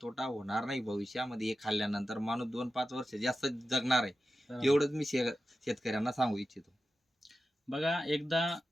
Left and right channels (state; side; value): normal; both; correlation 0.92